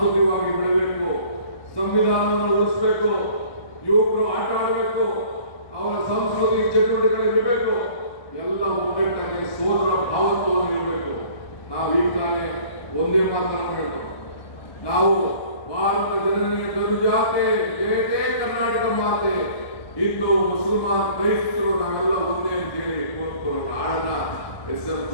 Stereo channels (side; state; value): right; late; 1.2 ms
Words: ಬೆಳಬೇಕು, ಸಂವಿಧಾನವನ್ನು ಉಳಿಸಬೇಕು, ಯುವಕರು ಆಟ ಆಡಬೇಕು, ಅವರ ಸಾಂಸ್ಕೃತಿಕ ಚಟುವಟಿಕೆಗಳಿರಬೇಕು, ಎಲ್ಲ ಒಗ್ಗಟ್ಟಾಗಿ ಸೋದರ ಭಾವತ್ವವನ್ನು ಇರಬೇಕು. ನಾವು ಈಗ ತಾನೇ ಒಂದೇ ಮಾತನ್ನು ಹೇಳ್ತೇವೆ, ನಾವು ಭಾರತ ಜನನಿಯ ತನುಜಾತೆ ಜಯತೆ ಕರ್ನಾಟಕ ಮಾತೆ, ಹಿಂದೂ ಮುಸಲ್ಮಾನ್ ಕ್ರೈಸ್ತರು ನಾವೆಲ್ಲ ಒಂದೇ ಅಂತ ಹೇಳಿ ಆಡನ ಎಸ್.ಎಂ.